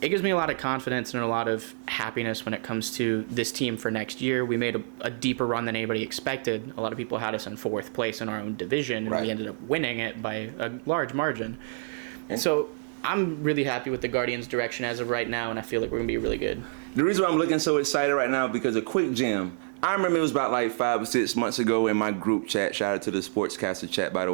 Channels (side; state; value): left; silent; digital silence